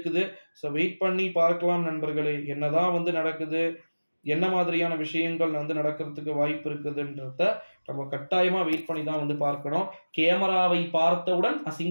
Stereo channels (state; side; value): inverted; both; correlation -1.00